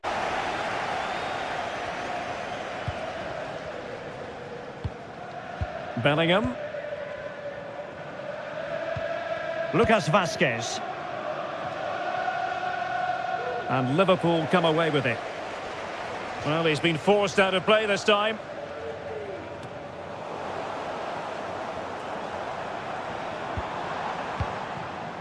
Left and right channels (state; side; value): identical; both; correlation 1.00